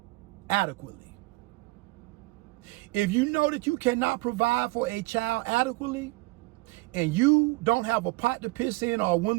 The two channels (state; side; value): quieter; left; 22.9 dB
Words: adequately. If you know that you cannot provide for a child adequately, and you don't have a pot to piss in or a